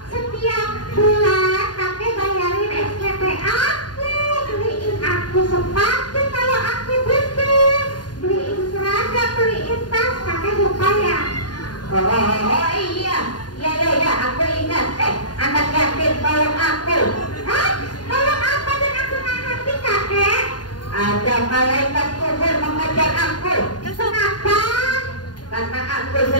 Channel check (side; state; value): right; late; 0.70 ms